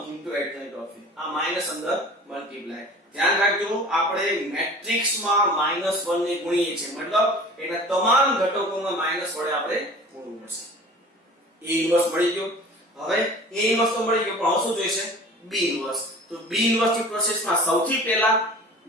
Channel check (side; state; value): both; normal; correlation 0.42